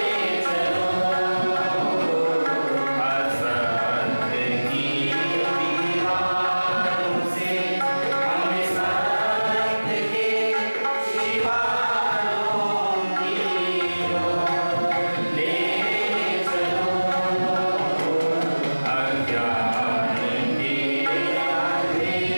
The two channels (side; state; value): both; inverted; correlation -1.00